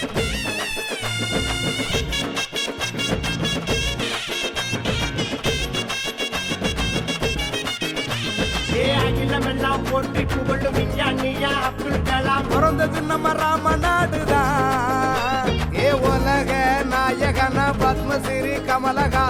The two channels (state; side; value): identical; both; correlation 1.00